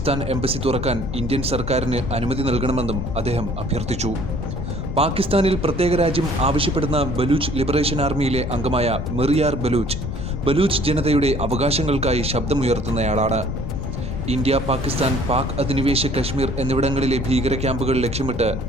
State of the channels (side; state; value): left; noise; rumble, 6 dB below the sound